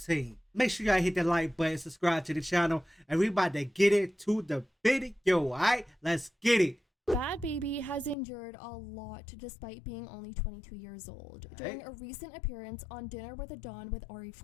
Make sure y'all hit that like button, subscribe to the channel, and we about to get into the video, alright? Let's get it. Bhad Bhabie has endured a lot despite being only 22 years old. During a recent appearance on Dinner with a Don with Ari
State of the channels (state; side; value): drops out; right; at 8.2 s